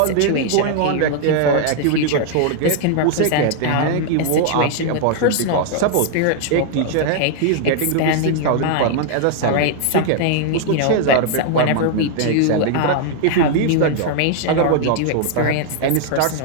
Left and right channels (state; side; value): different; both; correlation -0.01